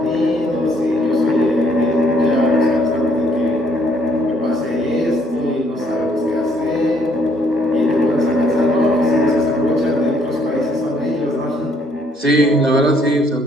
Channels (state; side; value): normal; both; correlation 0.67